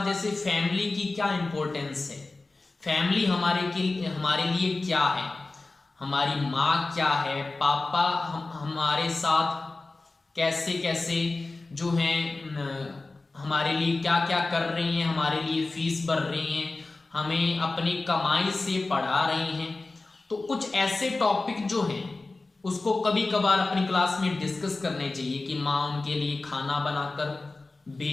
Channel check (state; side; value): quieter; right; 3.4 dB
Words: जैसे फैमिली की क्या इंपॉर्टेंस है, फैमिली हमारे लिए क्या है, हमारी माँ क्या है, पापा हमारे साथ कैसे कैसे जो है हमारे लिए क्या क्या कर रही हैं, हमारे लिए फीस भर रही हैं, हमें अपनी कमाई से पढ़ा रही हैं। तो कुछ ऐसे टॉपिक जो हैं उसको कभी कभार अपनी क्लास में डिस्कस करने चाहिए कि माँ उनके लिए खाना बनाकर